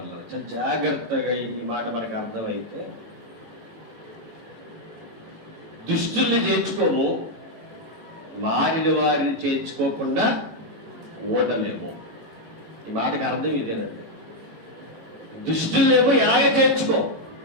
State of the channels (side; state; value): left; late; 18 ms